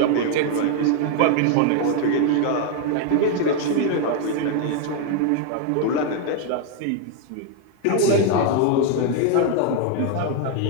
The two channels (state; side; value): different; both; correlation 0.00